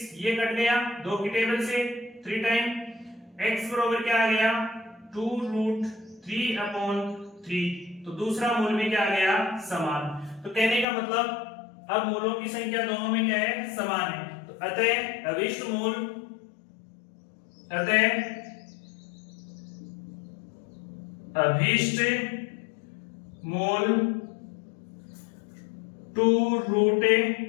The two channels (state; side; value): drops out; right; at 10.9 s